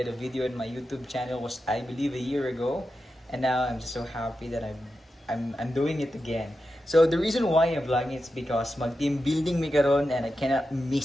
a video on my YouTube channel was, I believe, a year ago, and now I'm just so happy that I'm doing it again. So the reason why I'm vlogging is because mag-team building mi karon and I cannot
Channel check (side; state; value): both; normal; correlation 0.90